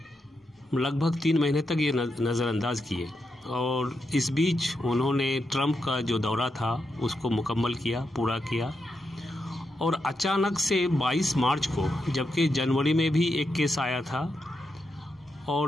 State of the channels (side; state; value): both; normal; correlation 0.85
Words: लगभग 3 महीने तक ये नज़रअंदाज किए और इस बीच उन्होंने ट्रंप का जो दौरा था उसको मुकम्मल किया, पूरा किया। और अचानक से 22 मार्च को, जबकि जनवरी में भी एक केस आया था,